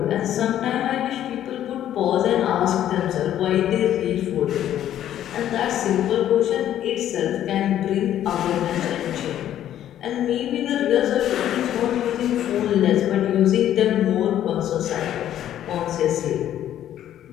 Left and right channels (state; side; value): quieter; right; 11.4 dB